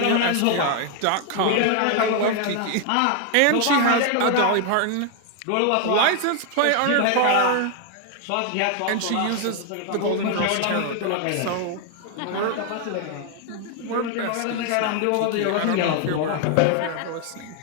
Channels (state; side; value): different; both; correlation 0.00